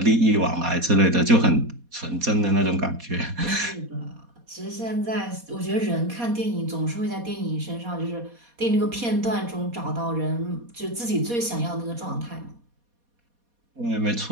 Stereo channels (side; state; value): left; late; 4.2 ms